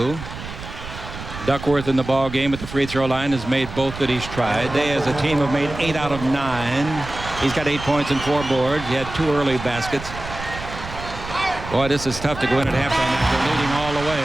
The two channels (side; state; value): right; noise; rumble, 11 dB below the sound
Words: Duckworth in the ball game at the free throw line has made both that he's tried. They as a team have made 8 out of 9. He's got 8 points and 4 boards. He had 2 early baskets. Boy, this is tough to go in at halftime after leading all the